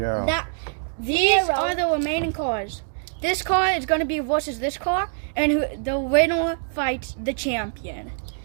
that. These Fiero. are the remaining cars. This car is going to be versus this car, and the winner fights the champion.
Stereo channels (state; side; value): silent; left; digital silence